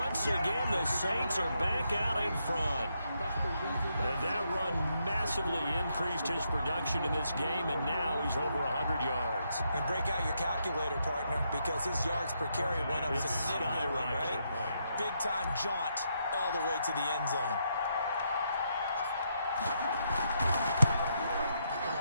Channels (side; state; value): both; inverted; correlation -0.79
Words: again, the Saints are back out in front. And that run massively increased his production in this game, and now he's over 100 yards. And break out your calculator, partner, because his yards per carry went up significantly, right? Big-time jaunt all the way to the end zone.